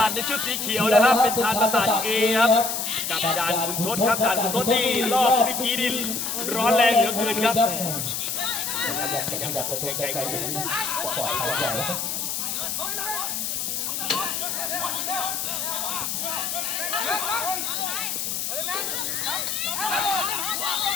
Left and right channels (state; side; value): noise; left; hiss, 2 dB below the sound